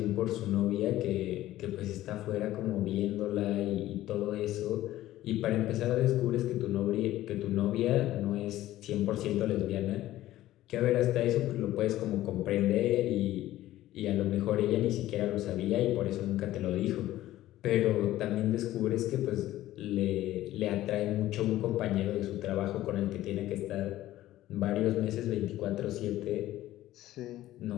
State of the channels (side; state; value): right; quieter; 14.8 dB